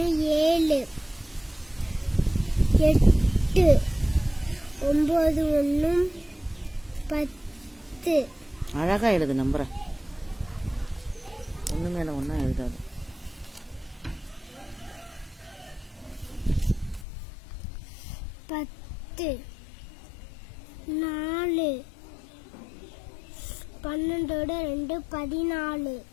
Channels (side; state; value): right; drops out; at 17.1 s